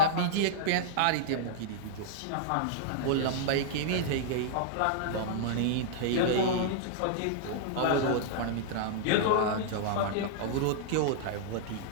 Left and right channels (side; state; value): both; different; correlation -0.02